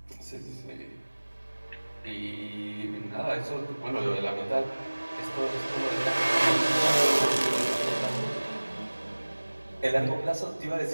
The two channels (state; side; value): inverted; both; correlation -1.00